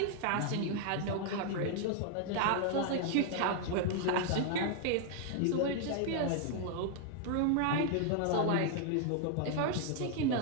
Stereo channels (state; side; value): different; both; correlation 0.00